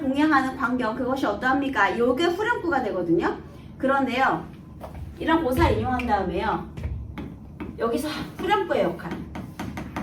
광경 그것이 어떠합니까? 이게 후렴구가 되거든요. 그런데요, 이런 고사를 인용한 다음에요, 여기서 후렴구의 역할,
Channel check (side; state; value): both; identical; correlation 1.00